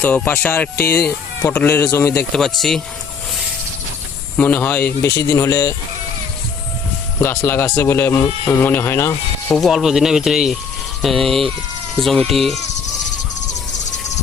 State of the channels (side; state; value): right; quieter; 5.9 dB